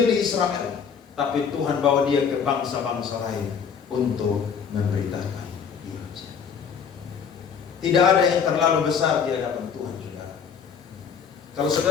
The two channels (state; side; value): quieter; right; 6.8 dB